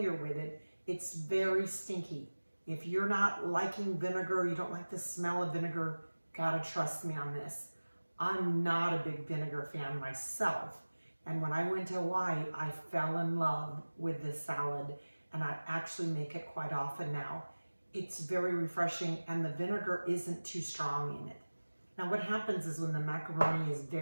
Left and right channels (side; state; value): both; inverted; correlation -1.00